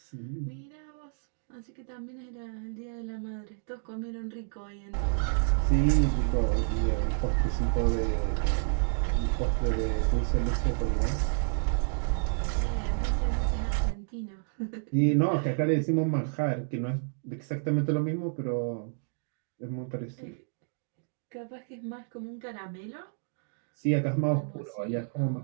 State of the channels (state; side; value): silent; left; digital silence